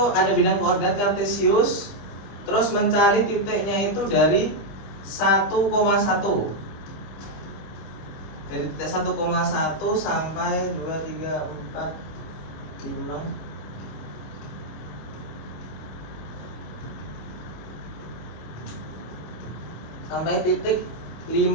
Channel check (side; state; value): right; late; 25 ms